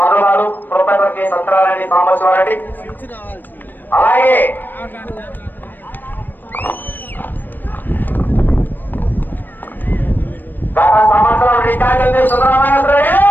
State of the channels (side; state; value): right; late; 0.091 ms